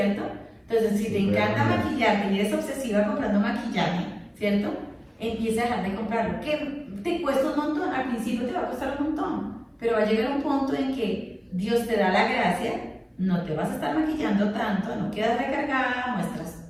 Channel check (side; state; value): both; identical; correlation 1.00